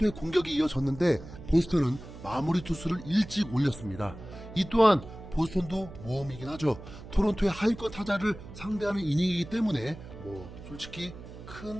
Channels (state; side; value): noise; right; hum, 15 dB below the sound